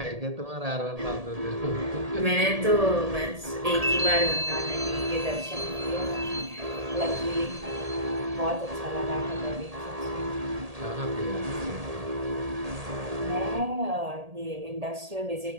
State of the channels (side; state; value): left; late; 1.8 ms